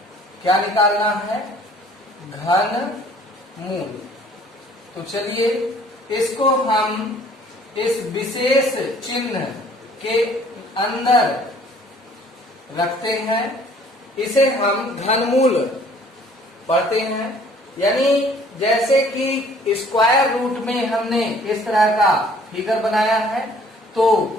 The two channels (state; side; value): normal; both; correlation 0.56